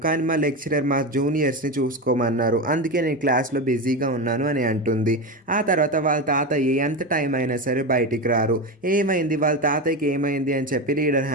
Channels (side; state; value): both; normal; correlation 0.19